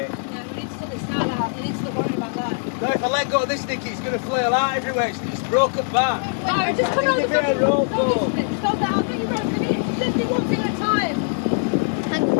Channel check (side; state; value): right; silent; 64 dB below the other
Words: Yeah, we need to sort this out. We need to stop worrying about that. No, if I let go of this, Nicky, it's going to flail out everywhere. It's broken back. No, just come on Give the me a bit of rope, Stop though. this, stop that. I'll get you rope. Just do one thing at a time. Hang on,